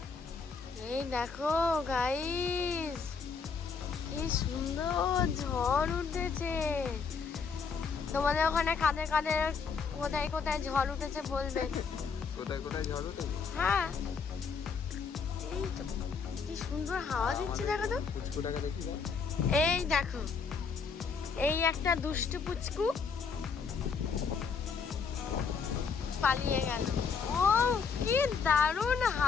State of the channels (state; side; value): quieter; right; 5.6 dB